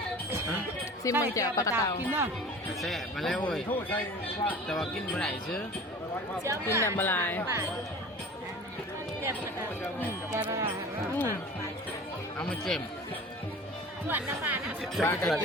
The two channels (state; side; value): normal; both; correlation 0.40